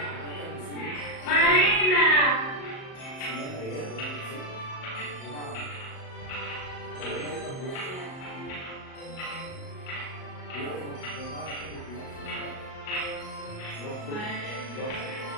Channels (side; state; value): right; late; 38 ms